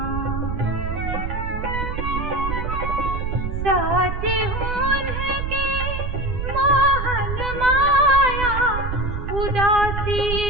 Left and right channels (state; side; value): noise; right; rumble, 3 dB below the sound